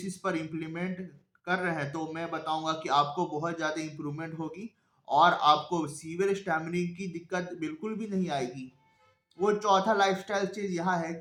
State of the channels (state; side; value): identical; both; correlation 1.00